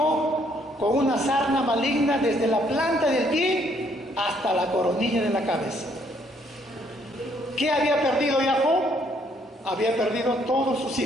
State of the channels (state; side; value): normal; both; correlation 0.67